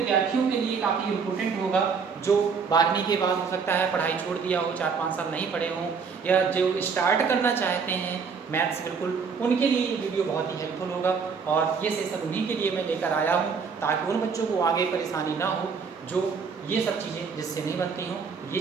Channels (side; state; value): left; quieter; 5.6 dB